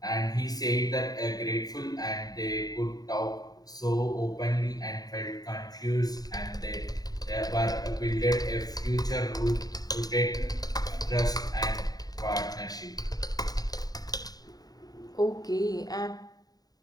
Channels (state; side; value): late; right; 0.18 ms